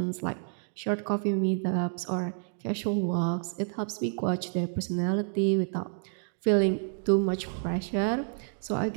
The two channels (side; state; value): left; silent; digital silence